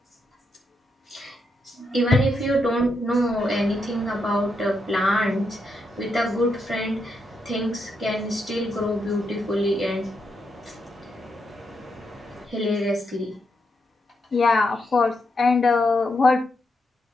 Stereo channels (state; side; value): normal; both; correlation 0.82